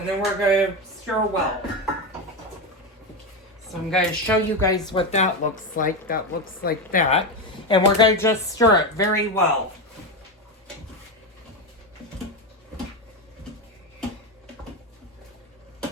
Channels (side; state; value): both; normal; correlation 0.13